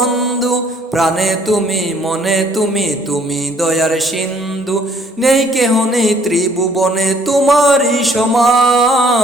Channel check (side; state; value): both; normal; correlation 0.62